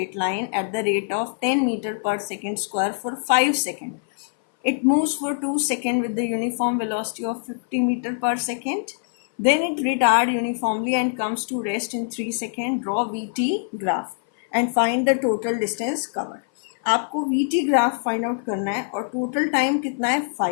line at the rate of 10 meter per second square for 5 seconds. It moves for 2 seconds with the uniform velocity of 50 meter per second. Then it retards uniformly and comes to rest in 3 seconds. Draw VT graph and find the total distance covered. आपको VT graph find out करना है और total time कितना है?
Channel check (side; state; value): right; silent; 58 dB below the other